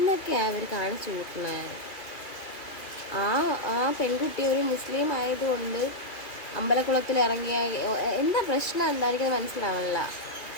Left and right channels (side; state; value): right; late; 2.6 ms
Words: അവർ കാണിച്ചു കൂട്ടുന്നത്. ആ പെൺകുട്ടി ഒരു മുസ്ലിം ആയതുകൊണ്ട് അമ്പലക്കുളത്തിൽ ഇറങ്ങിയ എന്താ പ്രശ്നം എന്തായിരിക്കും മനസ്സിലാവില്ല.